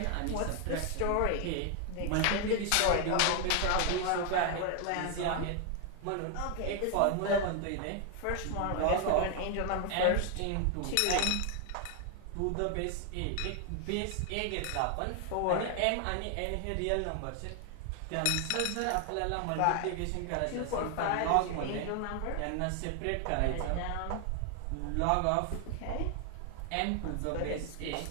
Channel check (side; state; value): both; different; correlation 0.00